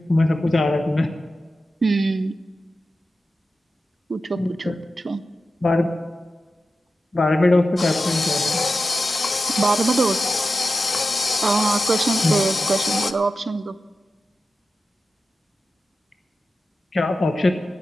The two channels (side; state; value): both; normal; correlation 0.92